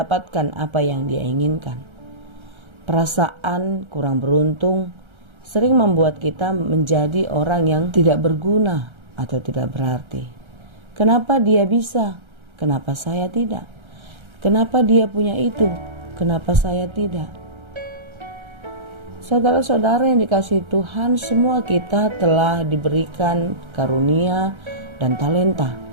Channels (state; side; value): late; left; 1.3 ms